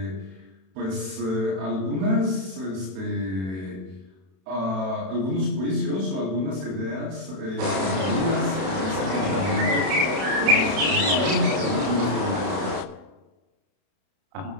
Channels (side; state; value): left; late; 32 ms